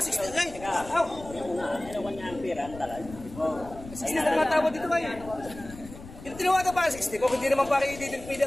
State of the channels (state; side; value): noise; left; rumble, 16 dB below the sound